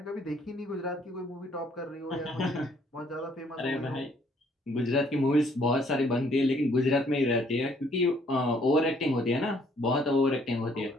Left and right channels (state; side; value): normal; both; correlation 0.64